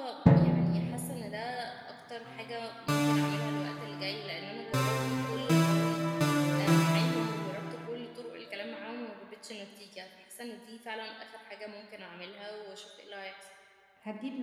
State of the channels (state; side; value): identical; both; correlation 1.00